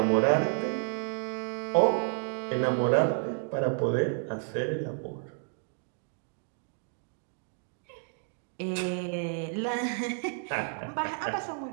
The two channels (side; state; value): left; silent; 57 dB below the other